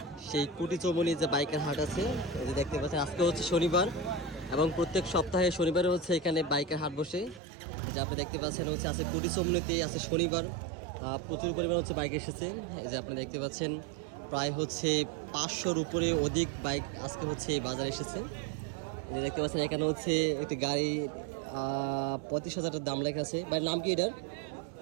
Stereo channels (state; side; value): drops out; left; at 7.4 s